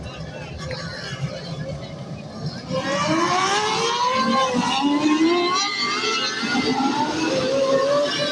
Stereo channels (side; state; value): both; identical; correlation 1.00